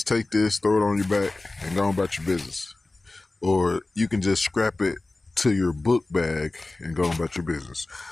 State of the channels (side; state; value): right; quieter; 3.1 dB